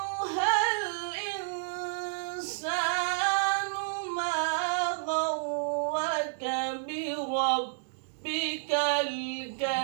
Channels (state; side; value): silent; left; digital silence